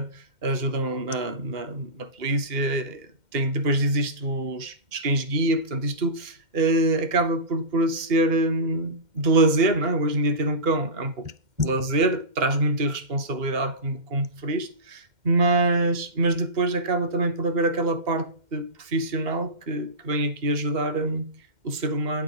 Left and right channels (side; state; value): left; late; 2.1 ms